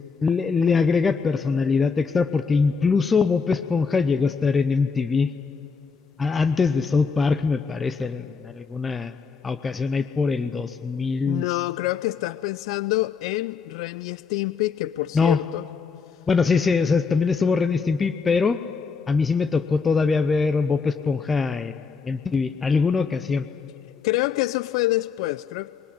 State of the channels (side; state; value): right; quieter; 5.3 dB